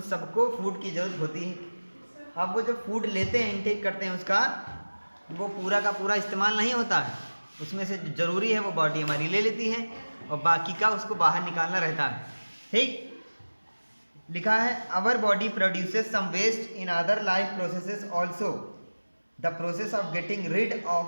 सबको फूड की जरूरत होती है। अब वो जो फूड लेते हैं, इनटेक करते हैं, उसका वो पूरा का पूरा इस्तेमाल नहीं होता है, उसमें से ज़रूरी है वो बॉडी हमारी ले लेती है और बाकी का उसको बाहर निकालना रहता है। ठीक, लिखा है our body produces some waste in other life processes also, the process of getting rid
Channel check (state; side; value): inverted; both; correlation -1.00